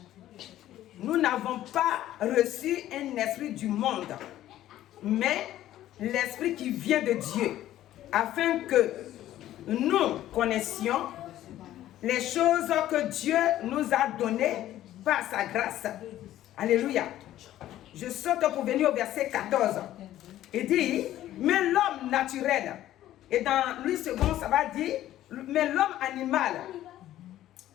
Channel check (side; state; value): right; quieter; 13.3 dB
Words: n'avons pas reçu un esprit du monde, mais l'esprit qui vient de Dieu, afin que nous connaissions les choses que Dieu nous a données par sa grâce. Alléluia. Je saute pour venir au verset 14. Il dit, mais l'homme naturel, et dans Louis II, ça va dire, mais l'homme animal